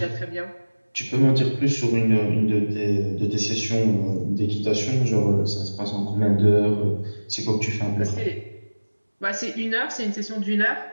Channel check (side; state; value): both; inverted; correlation -1.00